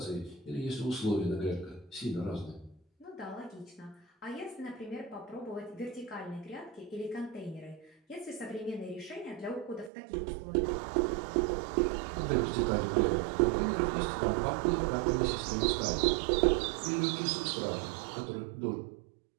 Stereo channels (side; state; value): left; drops out; at 9.9 s